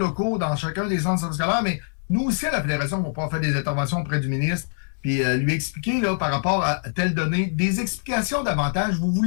dans chacun des centres de services scolaires, mais nous aussi, à la Fédération, on va pouvoir faire des interventions auprès du ministre, puis lui expliquer, là, par rapport à telle donnée, des explications davantage. Vous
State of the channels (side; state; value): right; silent; digital silence